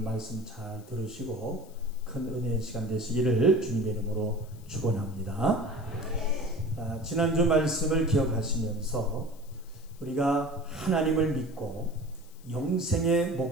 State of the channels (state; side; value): noise; left; hiss, 26 dB below the sound